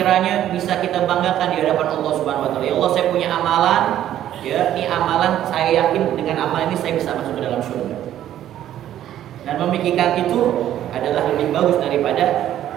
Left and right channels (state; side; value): quieter; left; 11.8 dB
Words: bisa kita banggakan di hadapan Allah Subhanahu wa taala? Ya Allah, saya punya amalan, ya, ini amalan saya yakin dengan amalan ini saya bisa masuk ke dalam surga. Dan memikirkan itu adalah lebih bagus daripada